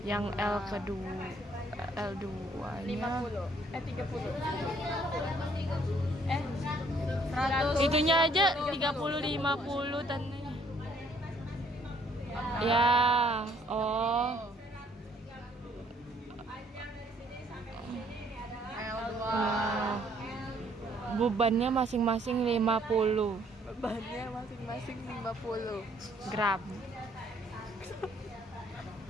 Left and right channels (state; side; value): normal; both; correlation 0.64